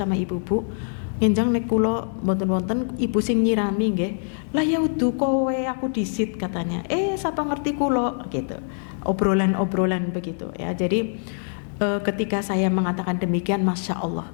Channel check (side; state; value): right; silent; digital silence